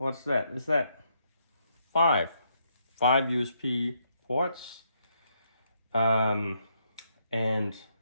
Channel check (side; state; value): both; inverted; correlation -0.75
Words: that? Is that 5 USB ports? And